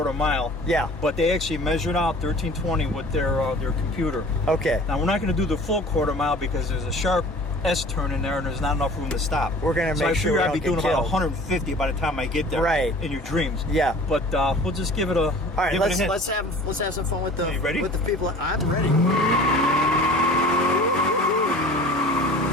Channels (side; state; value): both; normal; correlation 0.44